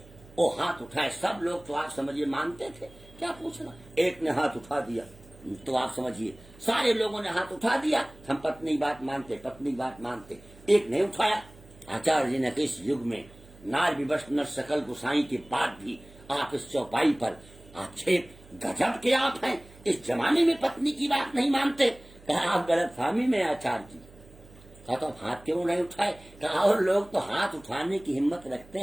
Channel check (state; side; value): noise; right; hum, 23 dB below the sound